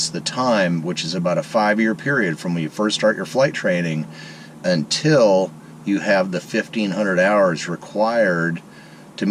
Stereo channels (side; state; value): both; identical; correlation 1.00